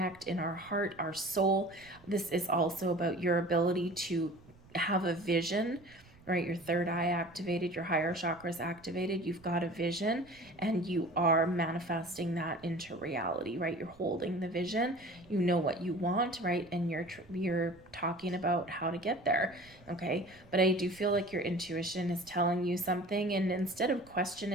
in our heart, our soul. This is also about your ability to have a vision, right? Your third eye activated, your higher chakras activated. You've got a vision and you are manifesting that into reality, right? You're holding the vision, you know what you want, right? And you're talking about how to get there, okay? But I do feel like your intuition is telling you something, and instead of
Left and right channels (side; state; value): right; noise; rumble, 25 dB below the sound